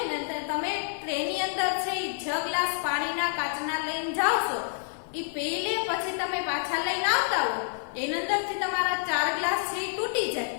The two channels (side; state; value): right; silent; digital silence